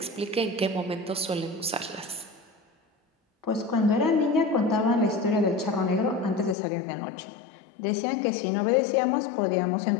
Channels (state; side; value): drops out; right; at 6.6 s